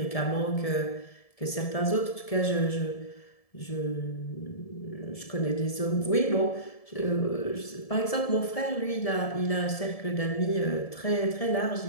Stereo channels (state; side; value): late; right; 1.7 ms